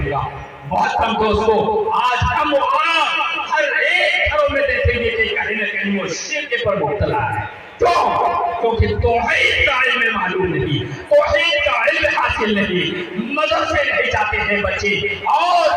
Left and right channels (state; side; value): identical; both; correlation 1.00